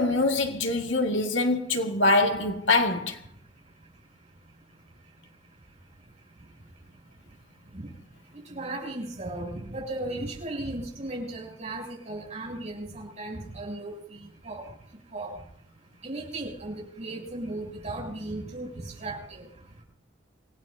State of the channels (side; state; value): both; normal; correlation -0.06